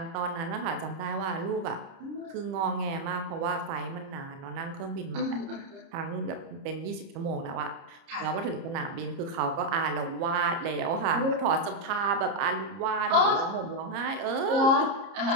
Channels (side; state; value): left; late; 30 ms